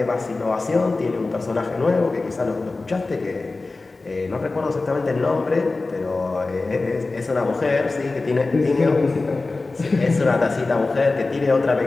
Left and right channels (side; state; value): right; quieter; 3.5 dB